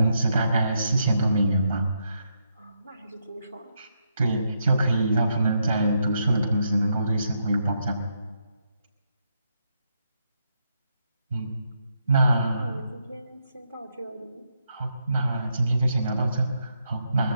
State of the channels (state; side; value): inverted; both; correlation -0.80